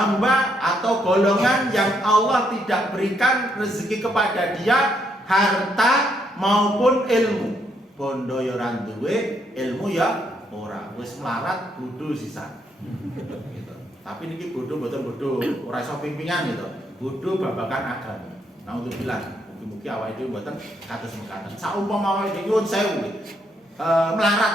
atau golongan yang Allah tidak berikan rezeki kepada dia harta maupun ilmu. Bondo ya ora duwe, ilmu ya ora. Wis melarat bodho sisan. Gitu. Tapi niki bodho mboten bodho, ora iso pimpingan gitu. Bodho babagan agama. Nah untuk bilang, mugi-mugi awake dhewe mboten kados mekaten. Saumpama awake dhewe nyuwun sewu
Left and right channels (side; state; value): both; normal; correlation 0.74